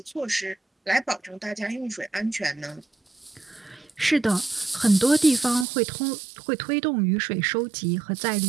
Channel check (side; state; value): left; drops out; at 5.7 s